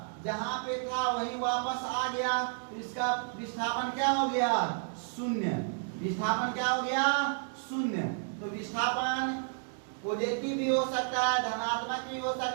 जहां पे था वहीं वापस आ गया, तो इसका विस्थापन क्या हो गया, शून्य। विस्थापन क्या हो गया, शून्य। तो विस्थापन पॉजिटिव भी हो सकता है, धनात्मक भी हो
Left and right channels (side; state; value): left; silent; digital silence